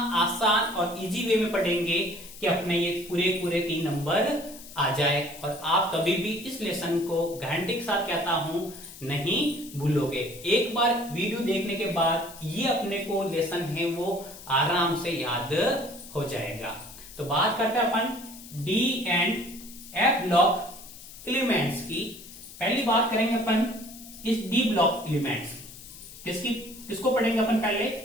आसान और इजी वे में पढ़ेंगे कि अपने ये पूरे 3 नंबर आ जाए और आप कभी भी इस लेसन को गारंटी के साथ कहता हूं नहीं भूलोगे। एक बार वीडियो देखने के बाद ये अपने को लेसन है वो आराम से याद हो जाएगा। तो बात करते हैं अपन D and F block elements की। पहली बात करेंगे अपन इस डी ब्लॉक एलिमेंट्स किसको पढ़ेंगे अपन पहले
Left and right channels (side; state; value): left; noise; hiss, 16 dB below the sound